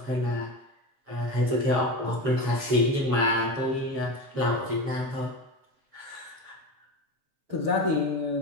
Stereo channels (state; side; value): late; left; 7.4 ms